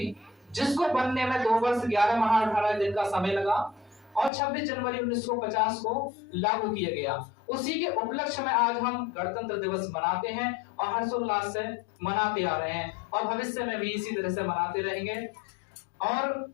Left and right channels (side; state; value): right; drops out; at 4.3 s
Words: जिसको बनने में 2 वर्ष 11 माह 18 दिन का समय लगा और 26 जनवरी 1950 को लागू किया गया। उसी के उपलक्ष्य में आज हम गणतंत्र दिवस मनाते हैं और हर्षोल्लास से मनाते आ रहे हैं और भविष्य में भी इसी तरह से मनाते रहेंगे। और